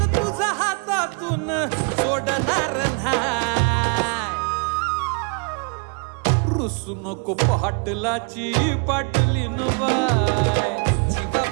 तुझा हातातून सोडणार नाही रुसू नको पाटलाची पाटलीन बाय जीवा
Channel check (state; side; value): quieter; left; 35.4 dB